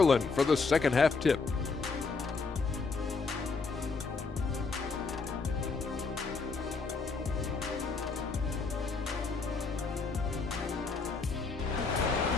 for the second half tip.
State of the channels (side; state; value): right; quieter; 4.5 dB